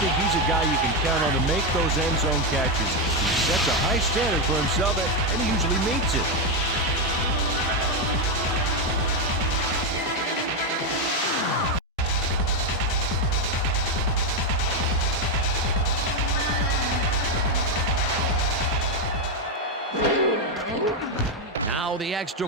he's a guy you can count on to make those end zone catches. He sets a high standard for himself, and he usually meets it. Now the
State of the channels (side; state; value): both; normal; correlation 0.06